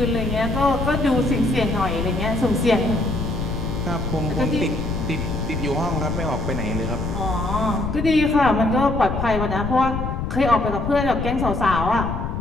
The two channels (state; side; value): noise; left; rumble, 3 dB below the sound